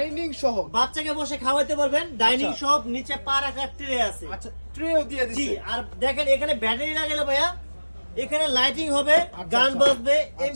সহ। বাচ্চাকে বসে খাওয়াতে পারবেন। ডাইনিং আচ্ছা। সহ, নিচে পা রাখার ট্রে আছে। আচ্ছা, ট্রেও দিয়ে জি, দিছে। আর দেখেন এখানে ব্যাটারি লাগালে ভাইয়া, এখানে লাইটিং হবে, আচ্ছা, গান আচ্ছা। বাজবে, আচ্ছা।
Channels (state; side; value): inverted; both; correlation -1.00